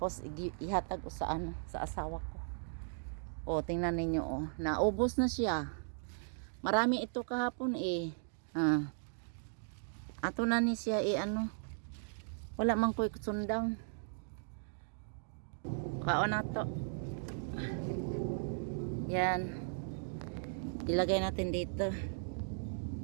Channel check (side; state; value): left; silent; digital silence